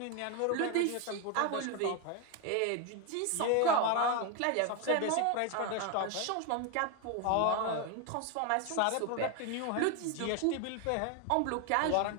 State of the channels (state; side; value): different; both; correlation 0.01